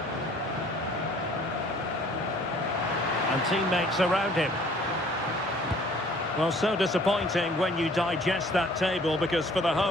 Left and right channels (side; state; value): both; normal; correlation 0.55